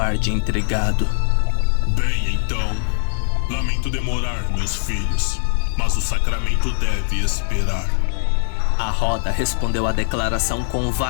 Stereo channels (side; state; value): right; silent; digital silence